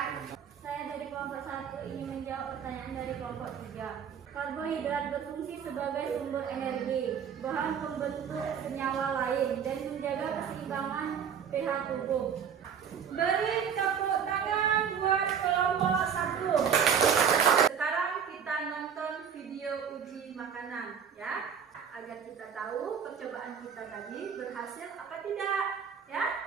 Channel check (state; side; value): quieter; left; 7.6 dB